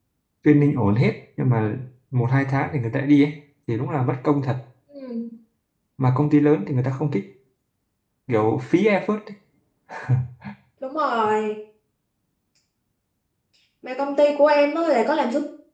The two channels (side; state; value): both; identical; correlation 1.00